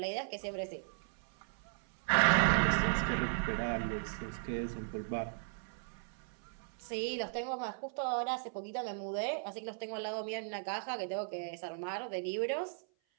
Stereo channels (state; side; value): silent; left; 53 dB below the other